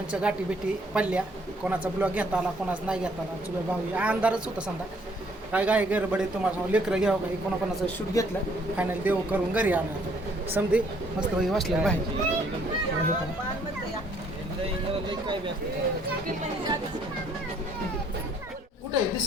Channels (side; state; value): both; normal; correlation 0.64